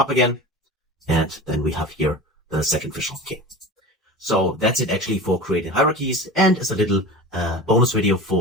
again. And then we have here the second visual. Okay. So that's it actually for creating hierarchies, and as a little bonus video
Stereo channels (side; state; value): both; normal; correlation 0.33